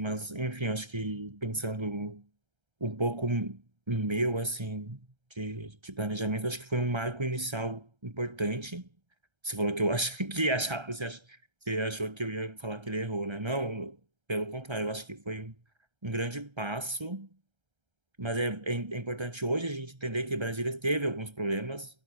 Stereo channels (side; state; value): left; late; 1.3 ms